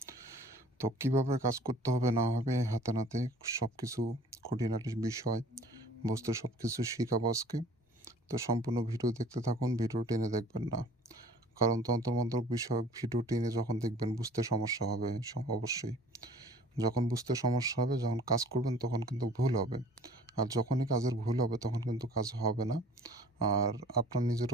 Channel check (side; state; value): both; normal; correlation 0.51